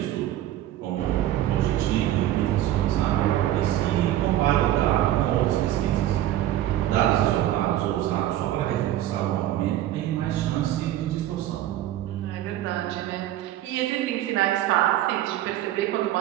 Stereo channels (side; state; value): left; quieter; 13.3 dB